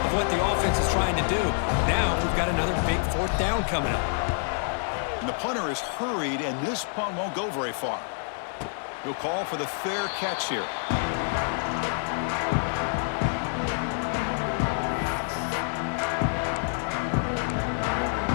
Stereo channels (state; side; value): silent; right; 60 dB below the other